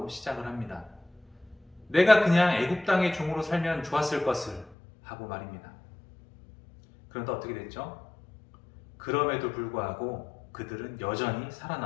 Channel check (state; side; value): drops out; right; at 4.8 s